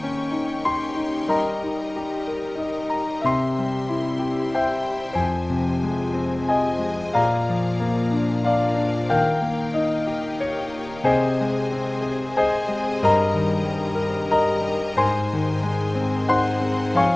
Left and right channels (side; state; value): right; noise; rumble, 20 dB below the sound